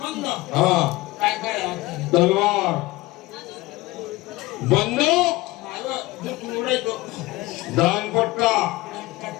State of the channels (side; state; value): right; quieter; 19.9 dB